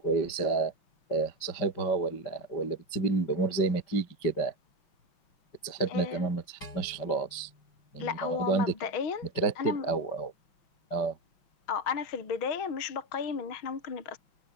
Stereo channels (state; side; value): late; right; 5.2 ms